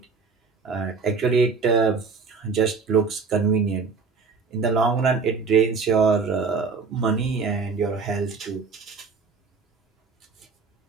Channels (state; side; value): quieter; left; 4.9 dB